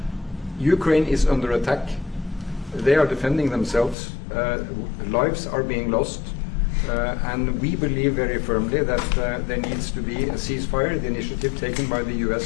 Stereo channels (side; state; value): right; drops out; at 4.0 s